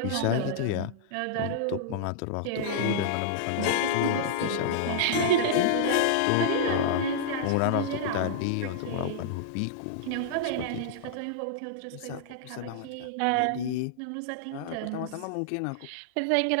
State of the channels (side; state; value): both; different; correlation -0.02